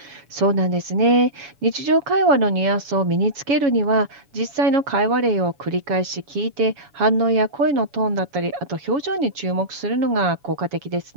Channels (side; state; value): left; late; 7.2 ms